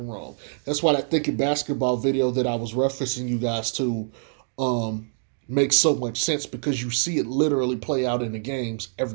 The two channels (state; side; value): silent; left; digital silence